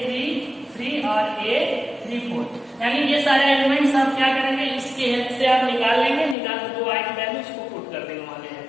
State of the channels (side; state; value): right; drops out; at 6.4 s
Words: और a34, यानी ये सारे एलिमेंट्स आप क्या करेंगे इसके हेल्प से आप निकाल लेंगे, निकाल के जो आई की वैल्यू उसको पुट कर देंगे मान लीजिए।